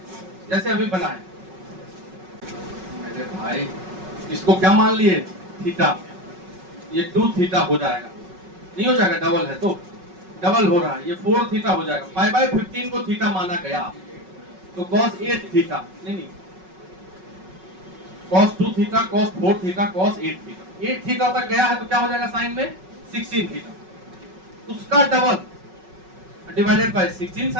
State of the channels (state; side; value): late; left; 5.4 ms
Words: जैसे अभी बनाए। मेरे भाई इसको क्या मान लिए थीटा, ये 2 थीटा हो जाएगा, नहीं हो जाएगा, डबल है तो डबल हो रहा है, ये 4 थीटा हो जाएगा। पाई बाय 15 को थीटा माना गया तो cos 8 थीटा, नहीं cos 2 theta, cos 4 theta, cos 8 theta. 8 theta तक गया है तो क्या हो जाएगा साइन में 16 थीटा, उसका double divided by 16